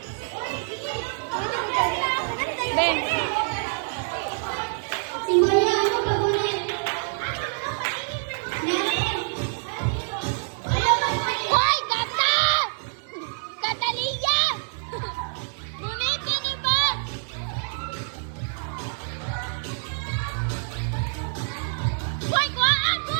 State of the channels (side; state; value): left; silent; 61 dB below the other